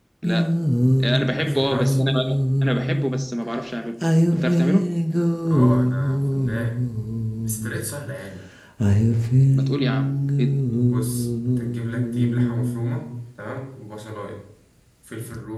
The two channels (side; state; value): both; identical; correlation 1.00